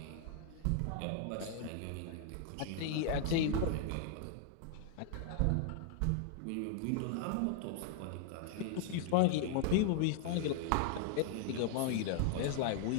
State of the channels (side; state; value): both; different; correlation 0.00